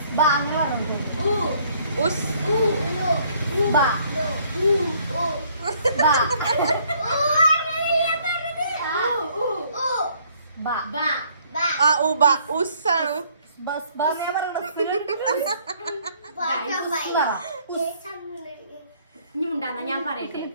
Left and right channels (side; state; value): both; inverted; correlation -0.63